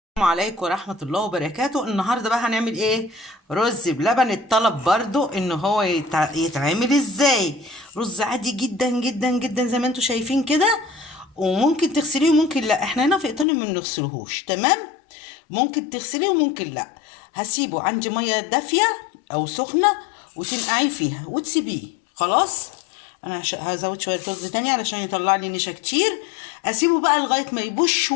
السلام عليكم ورحمة الله وبركاته. النهاردة بقى هنعمل ايه؟ رز بلبن. الطلب برضو ان هو يتعمل ازاي. رز عادي جدا جدا جدا زي ما انتوا شايفين كده، وممكن تغسليه وممكن لا. احنا هنا في ايطاليا ما بنغسلهوش، تمام؟ ممكن تغسليه وممكن لا. هسيبه عندي مية دافية او سخنة وتنقعيه فيها وتسيبيه. خلاص، انا هزود شوية رز تاني علشان يطلع لي نشا كتير. اسيبه بقى لغاية ما يبوش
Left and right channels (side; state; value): right; drops out; at 13.5 s